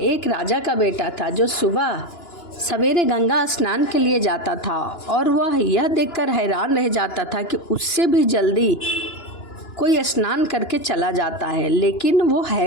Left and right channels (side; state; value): right; late; 2.9 ms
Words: राजा का बेटा था जो सुबह सवेरे गंगा स्नान के लिए जाता था और वह यह देखकर हैरान रह जाता था कि उससे भी जल्दी कोई स्नान करके चला जाता है, लेकिन वो